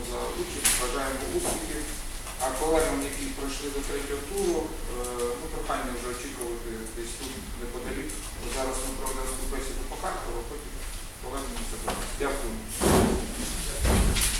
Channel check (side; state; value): both; identical; correlation 1.00